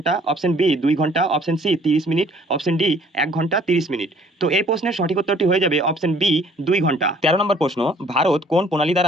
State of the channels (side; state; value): both; normal; correlation 0.57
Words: অপশন বি 2 ঘন্টা, option C 30 minute, option D 1 ঘন্টা 30 মিনিট। তো এই প্রশ্নের সঠিক উত্তরটি হয়ে যাবে অপশন বি 2 ঘন্টা। 13 নম্বর প্রশ্ন, ভারত কোন প্রণালী